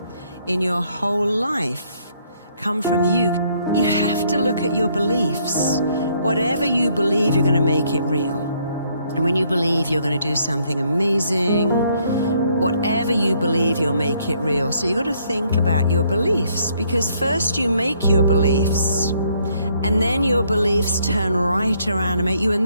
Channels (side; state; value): both; inverted; correlation -0.68